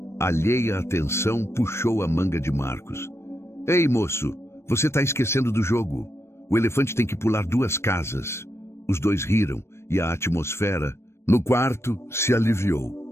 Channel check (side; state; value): right; late; 0.13 ms